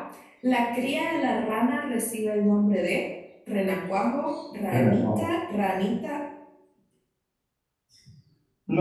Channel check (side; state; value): both; identical; correlation 1.00